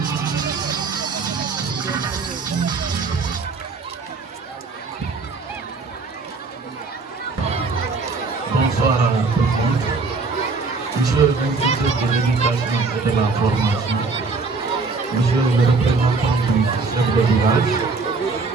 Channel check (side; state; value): left; quieter; 4.1 dB